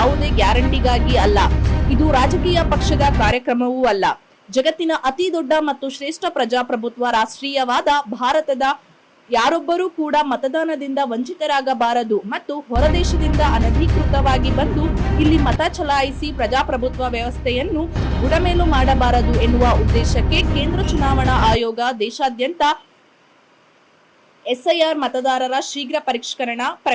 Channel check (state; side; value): identical; both; correlation 1.00